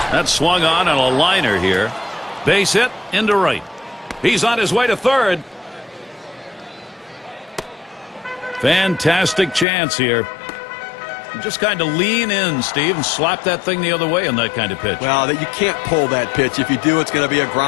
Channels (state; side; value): drops out; right; at 9.7 s